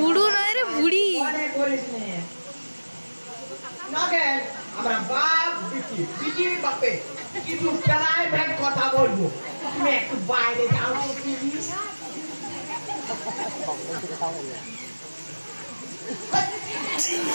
নয় রে, বুড়ি। মনে করিস নে নগে আমরা বাপ বিটি, বিটির বাপে কিছু প্রাইভেট কথা বলবো, তুমি একটু বাইরে যাও তো প্লিজ।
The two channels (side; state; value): both; inverted; correlation -1.00